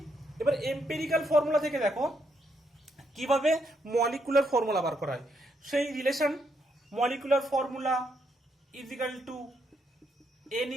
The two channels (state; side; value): normal; both; correlation 0.76